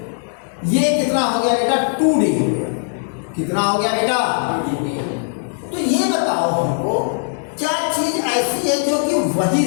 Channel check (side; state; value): right; silent; digital silence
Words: ये कितना हो गया बेटा? 2D हो गया। कितना हो गया बेटा? तो ये बताओ हमको, क्या चीज ऐसी है जो कि वही